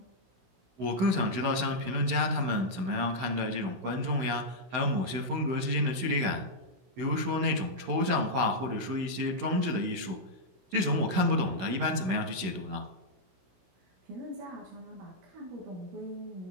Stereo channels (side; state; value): left; late; 16 ms